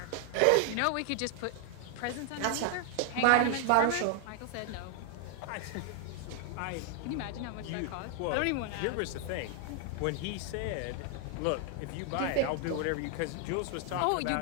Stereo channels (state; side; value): different; both; correlation 0.00